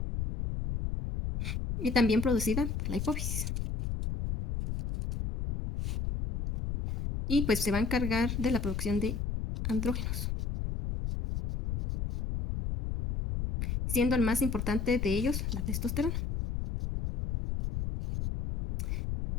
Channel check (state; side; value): noise; left; rumble, 2 dB below the sound